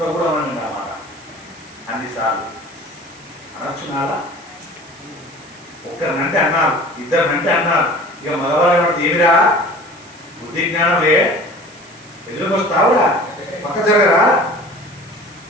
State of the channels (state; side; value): noise; right; hiss, 24 dB below the sound